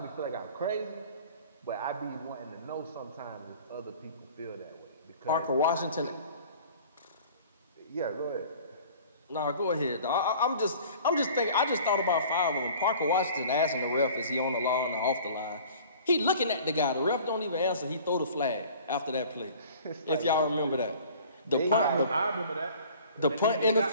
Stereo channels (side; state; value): both; inverted; correlation -0.47